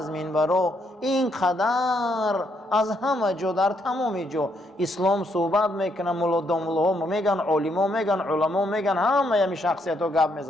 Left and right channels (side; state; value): both; normal; correlation 0.74